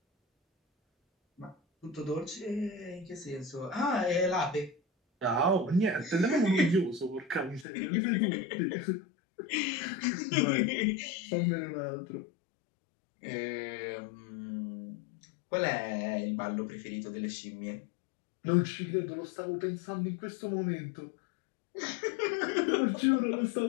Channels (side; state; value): right; drops out; at 7.7 s